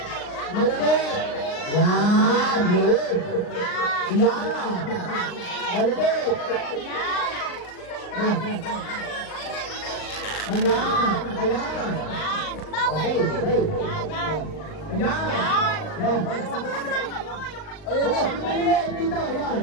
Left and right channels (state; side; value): late; right; 39 ms